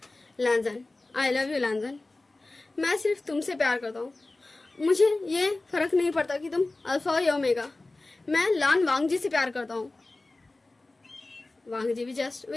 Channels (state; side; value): quieter; right; 3.1 dB